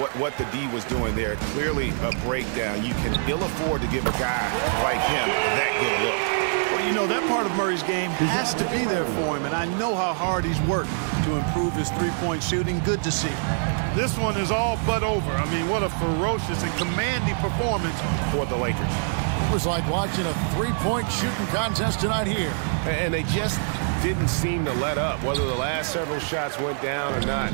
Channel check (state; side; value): silent; left; digital silence